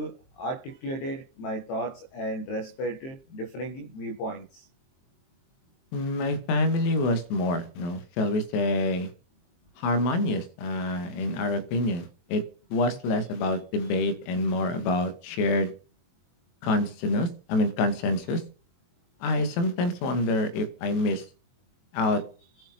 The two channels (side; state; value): right; late; 23 ms